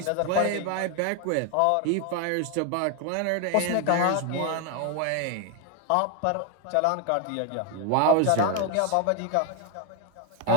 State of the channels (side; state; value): both; different; correlation 0.01